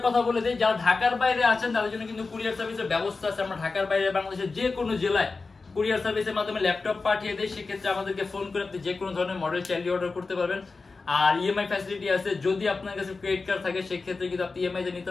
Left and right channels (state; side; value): quieter; right; 4.0 dB